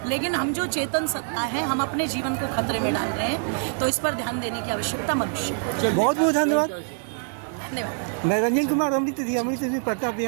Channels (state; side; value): silent; left; digital silence